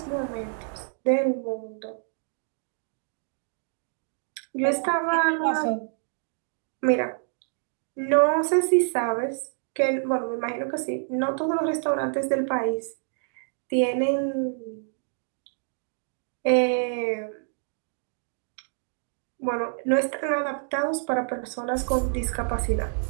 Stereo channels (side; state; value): left; silent; digital silence